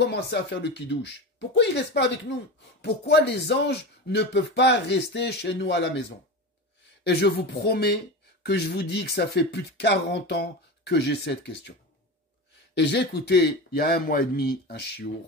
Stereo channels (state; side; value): normal; both; correlation 0.25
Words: à faire le kidouche? Pourquoi ils ne restent pas avec nous? Pourquoi les anges ne peuvent pas rester chez nous à la maison? Et je vous promets que je vous dis que ça fait plus de 40 ans que j'ai cette question. Et j'ai écouté, il y a 1 mois et demi, un